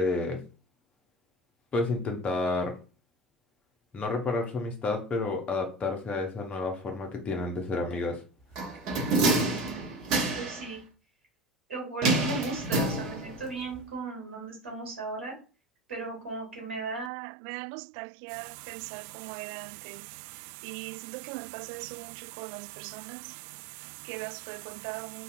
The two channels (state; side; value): drops out; left; at 17.1 s